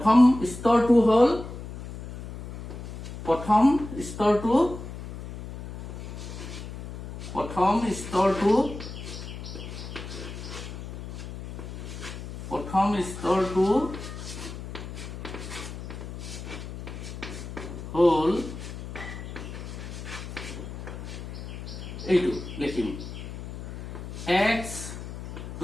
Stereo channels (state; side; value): noise; left; hum, 10 dB below the sound